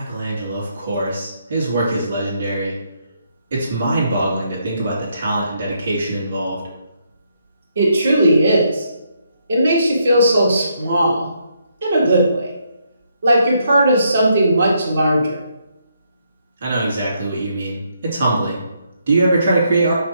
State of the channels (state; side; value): inverted; both; correlation -0.75